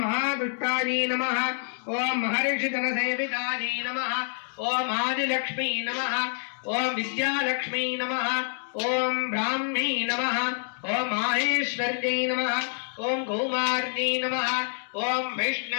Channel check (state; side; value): silent; right; digital silence